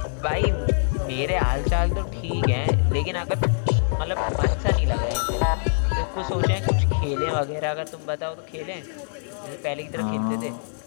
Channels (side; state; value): right; silent; 62 dB below the other